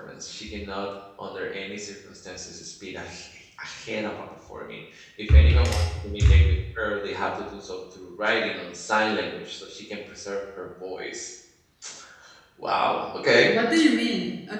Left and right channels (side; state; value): both; identical; correlation 1.00